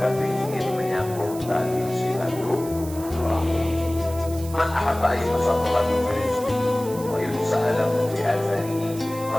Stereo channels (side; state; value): right; noise; hiss, 15 dB below the sound